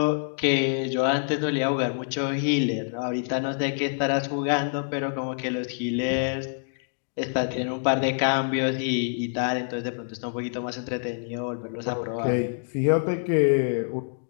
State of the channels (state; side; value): silent; right; digital silence